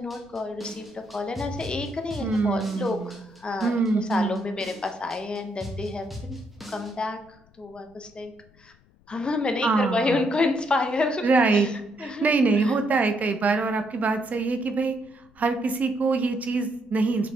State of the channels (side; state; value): left; noise; rumble, 29 dB below the sound